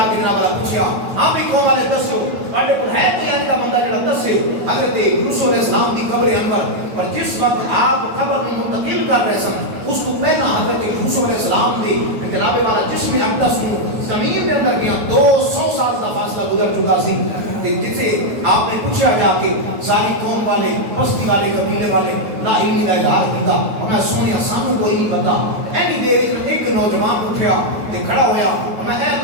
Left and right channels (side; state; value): left; late; 9.1 ms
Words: کے جناب والا پوچھیا ہاں بھی قوم والے دسو تواڈے کول ہے کوئی ایسا بندہ جڑا دسے حضرت یوسف علیہ السلام دی قبر انور اور جس وقت آپ قبر کو منتقل کر رہے سن اس کو پہلا حضرت یوسف علیہ السلام دی جناب والا جسم اقدس نو زمین دے اندر گیا 200 سال دا فاصلہ گزر چکا سی جسے آپ نے پوچھا جا کے ساری قوم والے بستی والے قبیلے والے لا علمی کا اظہار کیتا میں سنیا سانو کوئی نہیں پتا اینی دیر میں ایک نوجوان اٹھیا تے کھڑا ہویا میں اے